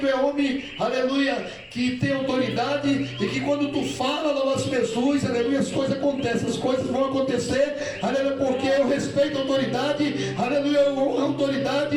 é homem, aleluia, que tem autoridade e que quando tu fala no nosso Jesus, aleluia, as coisas acontecem, as coisas vão acontecer, aleluia, porque eu respeito a autoridade, aleluia, eu honro a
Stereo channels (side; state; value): both; identical; correlation 1.00